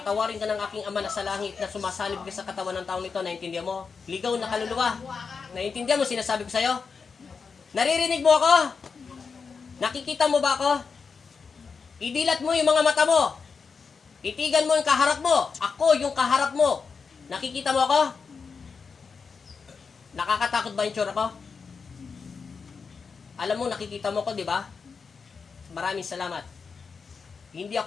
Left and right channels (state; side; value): quieter; right; 5.3 dB